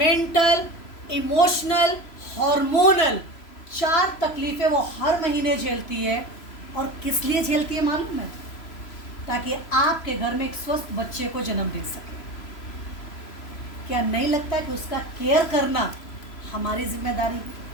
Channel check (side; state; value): right; late; 3.0 ms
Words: इमोशनल, हार्मोनल 4 तकलीफ़ें वो हर महीने झेलती है। और किस लिए झेलती है मालूम है? ताकि आपके घर में एक स्वस्थ बच्चे को जन्म दे सके। क्या नहीं लगता है कि उसका केयर करना हमारी जिम्मेदारी है?